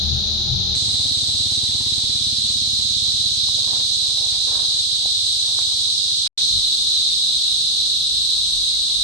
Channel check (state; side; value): normal; both; correlation 0.02